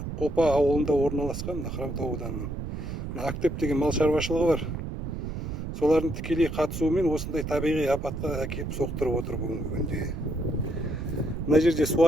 Қопа ауылында орналасқан Хромтау ауданының Актеп деген мал шаруашылығы бар. Солардың тікелей қатысуымен осындай табиғи апатқа әкеліп соқтырып отыр бүгінгі күнде. Мына жерде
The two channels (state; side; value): noise; right; rumble, 5 dB below the sound